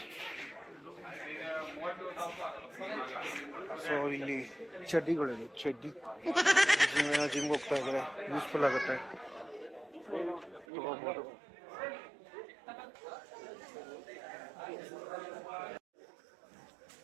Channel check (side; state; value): left; drops out; at 10.7 s